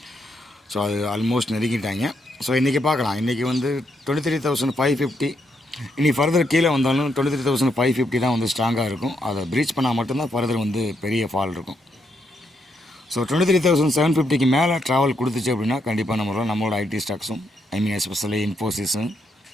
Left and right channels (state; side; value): normal; both; correlation 0.78